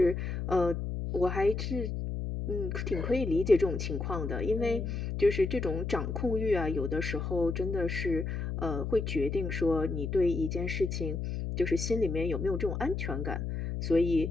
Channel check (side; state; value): left; noise; hum, 3 dB below the sound